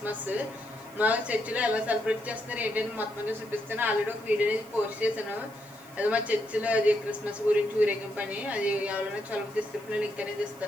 మా చర్చిలో ఎలా సెలబ్రేట్ చేస్తున్నారు ఏంటంటే మొత్తం అనేది చూపిస్తాను. ఆల్రెడీ ఒక వీడియో అనేది పోస్ట్ చేశాను. అది మా చర్చిలో అది క్రిస్మస్ గురించి ఊరేగింపు అని. అది ఎవరైనా చొలవ డిస్క్రిప్షన్లో లింక్ అనేది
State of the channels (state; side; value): noise; right; hiss, 23 dB below the sound